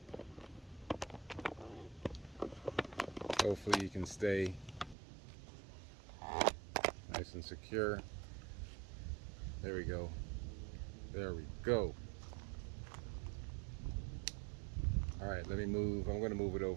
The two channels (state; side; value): drops out; left; at 5.0 s